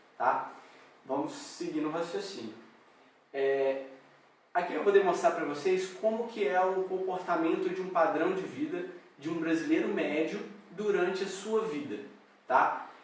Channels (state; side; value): identical; both; correlation 1.00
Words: tá? Vamos seguir no raciocínio. Aqui eu vou demonstrar para vocês como que é o comportamento de um padrão de vida de um brasileiro médio durante a sua vida, tá?